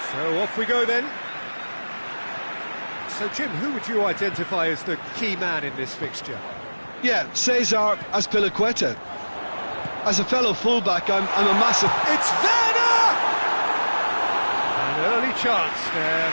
So off we go then. So Jim, who would you identify as the key man in this fixture? Yeah, Cesar Azpilicueta. As a fellow fullback, I'm a massive... It's Werner! An early chance there,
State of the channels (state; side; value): inverted; both; correlation -1.00